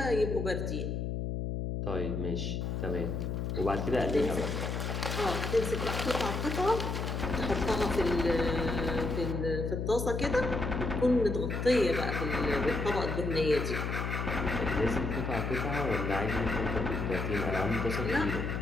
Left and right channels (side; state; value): left; noise; hum, 2 dB below the sound